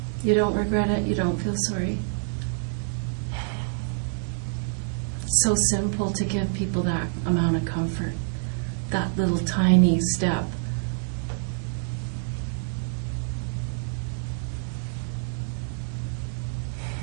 You don't regret it? You don't feel sorry? It's so simple to give people that amount of comfort, that little tiny step.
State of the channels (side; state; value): left; silent; digital silence